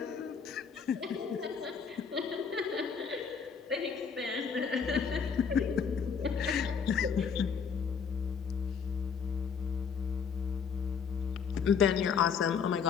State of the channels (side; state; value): right; quieter; 6.3 dB